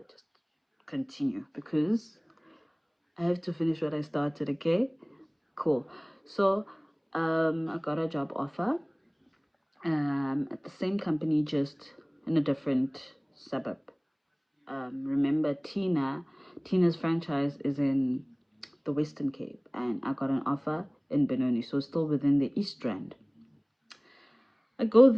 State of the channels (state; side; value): identical; both; correlation 1.00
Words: just continue, because I have to finish what I started, okay? Cool. So I got a job offer at the same company, just in a different suburb. Remember, Tina's franchise is in the Western Cape, and I got an offer in Benoni, so still within the East Rand. I go